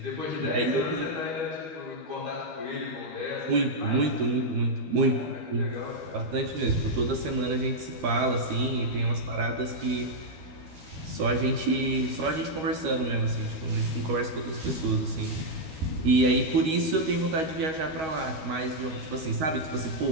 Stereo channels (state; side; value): late; left; 13 ms